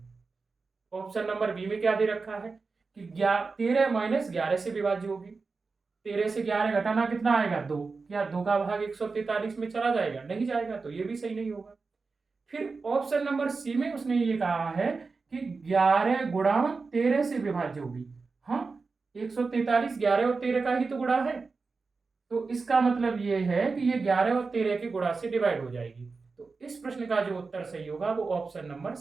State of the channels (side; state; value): left; quieter; 4.3 dB